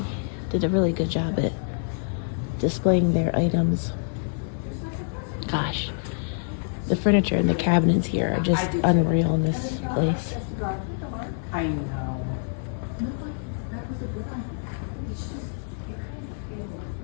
did a really good job at displaying their items. Gosh, the furniture and the cabinets here are just unreal in this place. I know.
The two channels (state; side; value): silent; right; 58 dB below the other